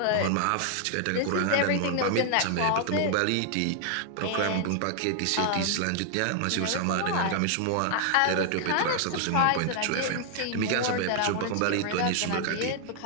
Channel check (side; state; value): both; different; correlation 0.00